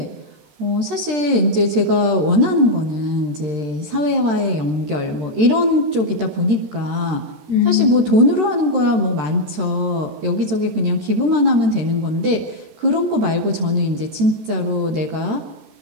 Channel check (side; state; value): left; late; 13 ms